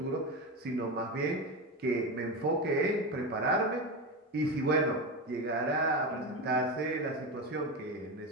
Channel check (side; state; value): both; normal; correlation 0.18